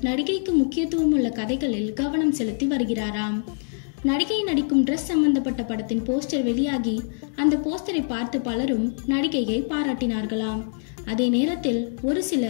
நடிகைக்கு முக்கியத்துவம் உள்ள கதைகளில் கவனம் செலுத்தி வருகிறாராம். நடிகை நடிக்கும் ட்ரெஸ் சம்பந்தப்பட்ட படத்தின் போஸ்டர் வெளியாகி அந்த போஸ்டரை பார்த்து பலரும் நடிகையை பாராட்டினார்களாம். அதே நேரத்தில் ஒரு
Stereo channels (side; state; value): right; silent; digital silence